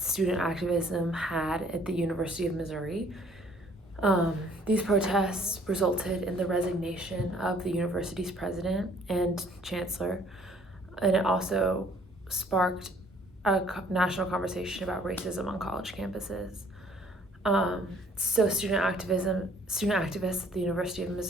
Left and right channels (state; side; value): normal; both; correlation 0.59